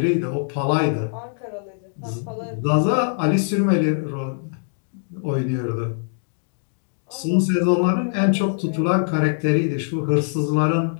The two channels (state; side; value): silent; right; digital silence